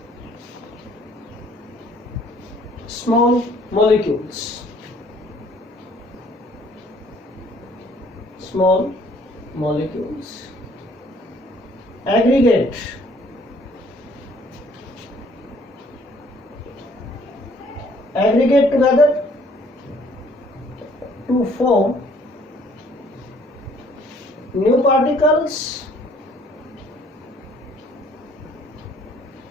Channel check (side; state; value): both; normal; correlation 0.60